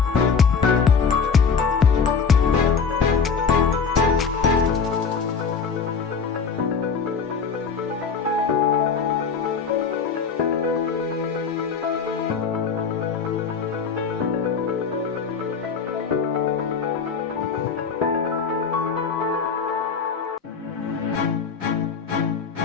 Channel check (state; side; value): quieter; right; 5.7 dB